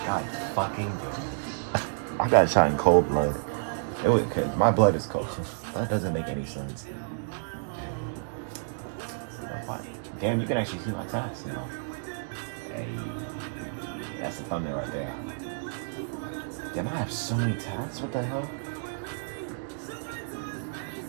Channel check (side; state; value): left; silent; digital silence